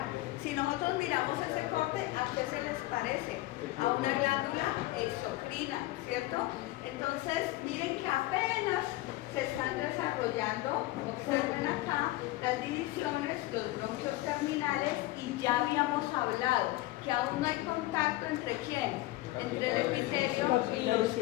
Si nosotros miramos ese corte, ¿a qué se les parece? A una glándula exocrina, ¿cierto? Entonces, miren que apenas se están desarrollando, observen acá las divisiones, los bronquios terminales, y ya habíamos hablado que aún no hay contacto entre ¿quién? Entre el epitelio y los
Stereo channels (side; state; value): right; quieter; 18.1 dB